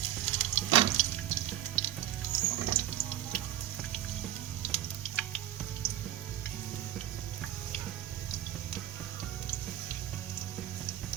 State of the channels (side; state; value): left; quieter; 12.6 dB